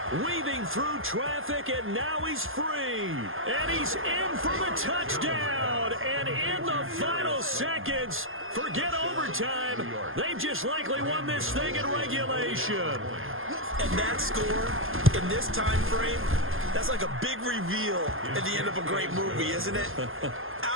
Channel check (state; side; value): late; left; 0.60 ms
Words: weaving through traffic, and now he's free. And he's in for the touchdown. And in the final seconds, forget overtime. They've just likely won this thing in regulation. And that score in this time frame, that's like a big reveal at the end of a great movie, isn't it?